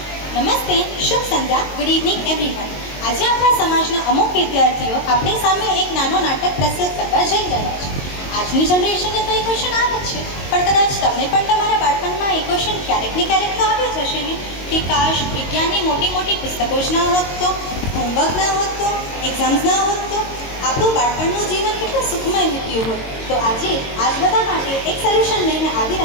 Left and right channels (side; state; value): right; late; 22 ms